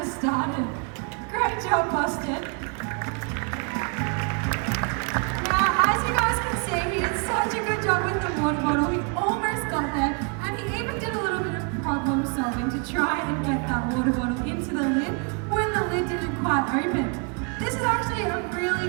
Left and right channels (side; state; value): left; quieter; 36.0 dB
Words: started. Great job, Boston. Now, as you guys can see, he did such a good job with the water bottle. He almost got there, and he even did a little bit of problem solving to try and get that water bottle into the lid when the lid didn't quite open. This is actually a